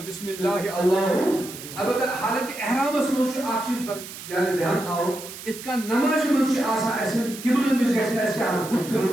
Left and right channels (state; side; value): noise; right; hiss, 13 dB below the sound